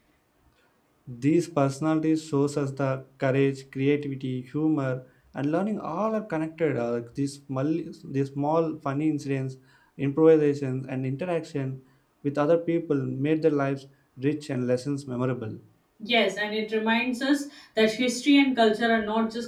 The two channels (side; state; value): both; identical; correlation 1.00